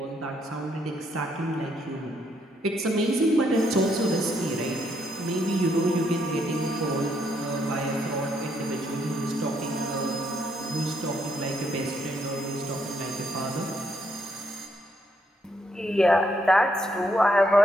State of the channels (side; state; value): both; normal; correlation 0.74